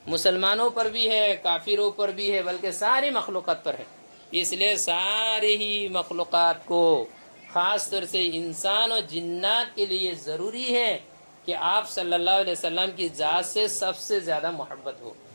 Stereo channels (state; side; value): inverted; both; correlation -1.00